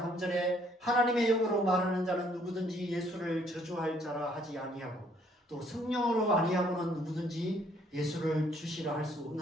3절에 하나님의 영으로 말하는 자는 누구든지 예수를 저주할 자라 하지 아니하고 또 성령으로 아니하고는 누구든지 예수를 주시라 할 수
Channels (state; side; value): normal; both; correlation 0.65